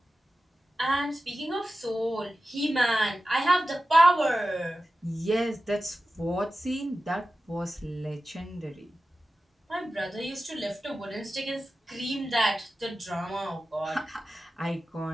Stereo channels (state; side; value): normal; both; correlation 0.94